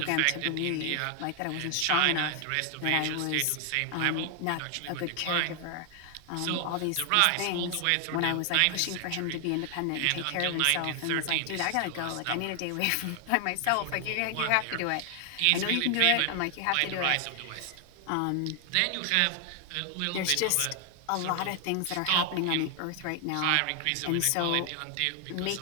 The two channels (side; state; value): both; different; correlation 0.00